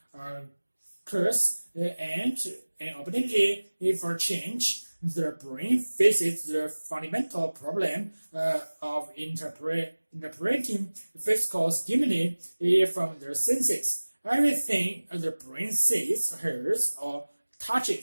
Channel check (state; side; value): inverted; both; correlation -1.00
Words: curse and an opportunity for change. The brain faces the fundamental problem of interpreting physical stimuli from the senses. Everything the brain sees, hears, or